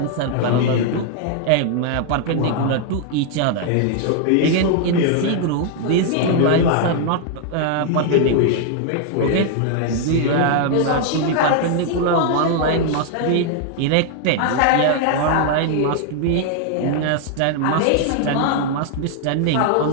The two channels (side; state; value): both; different; correlation 0.00